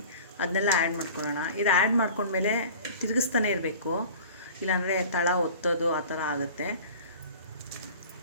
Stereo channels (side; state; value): both; inverted; correlation -0.42